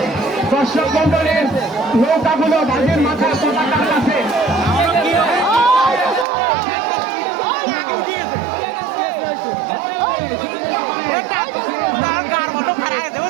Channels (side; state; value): left; drops out; at 6.2 s